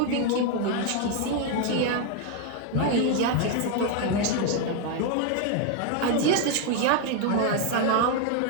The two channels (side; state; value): both; different; correlation 0.01